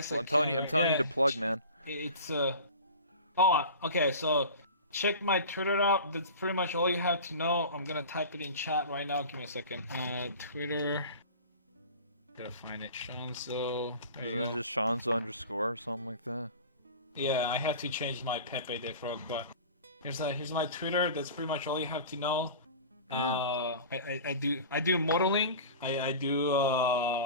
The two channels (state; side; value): inverted; both; correlation -0.37